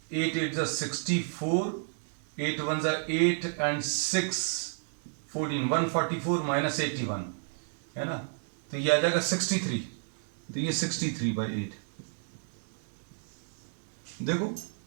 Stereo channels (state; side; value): silent; left; digital silence